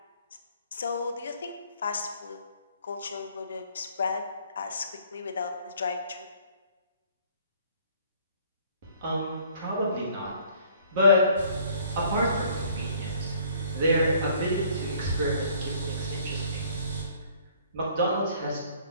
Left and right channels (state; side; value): inverted; both; correlation -0.57